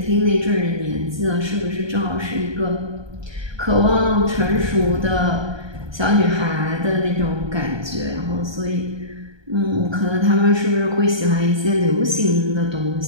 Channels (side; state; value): left; late; 1.2 ms